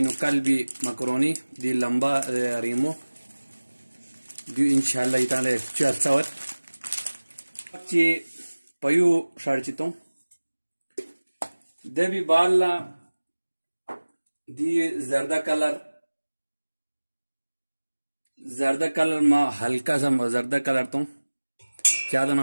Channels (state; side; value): inverted; both; correlation -1.00